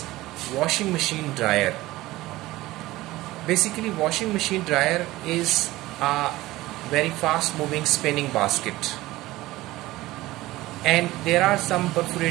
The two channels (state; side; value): quieter; left; 17.9 dB